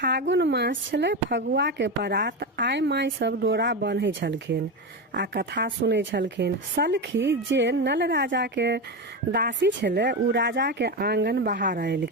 मास छले, फगुआ के परात। आइ माय सब डोरा बन्है छलखिन आ कथा सुनै छलखिन। सलखी जे नल राजा के दासी छले, उ राजा के आंगन बाहर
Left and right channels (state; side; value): normal; both; correlation 0.17